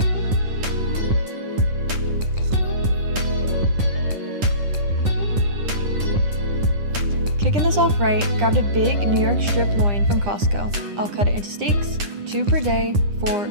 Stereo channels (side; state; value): left; late; 9.9 ms